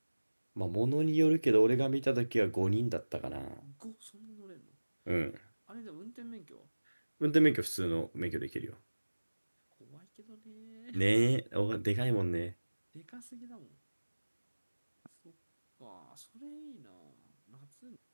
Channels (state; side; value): inverted; both; correlation -1.00